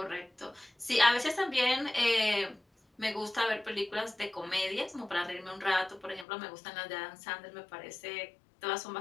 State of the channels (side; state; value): right; drops out; at 6.2 s